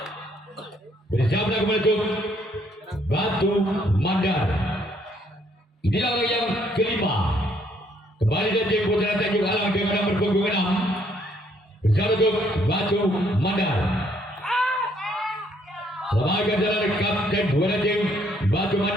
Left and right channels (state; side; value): normal; both; correlation 0.68